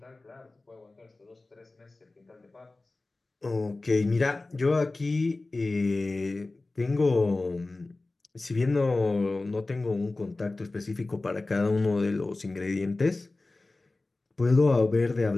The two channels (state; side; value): quieter; right; 3.2 dB